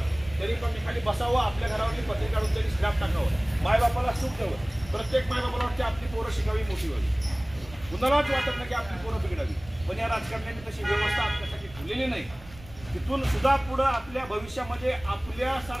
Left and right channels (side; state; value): right; noise; rumble, 19 dB below the sound